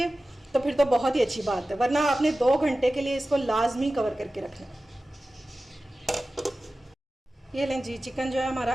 तो फिर तो बहुत ही अच्छी बात है, वरना आपने 2 घंटे के लिए इसको लाजमी कवर करके रखना है। ये लें जी, चिकन जो है हमारा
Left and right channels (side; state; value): both; normal; correlation 0.95